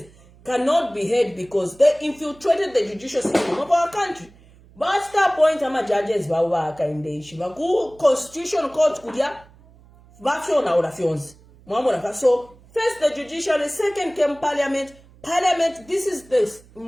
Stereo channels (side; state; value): right; noise; hum, 26 dB below the sound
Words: cannot be heard because they infiltrated the judicial system of our country. But that point, judges Hakainde Hichilema, Constitutional Court kudia, so first the judiciary, second came parliament. Parliament, this is the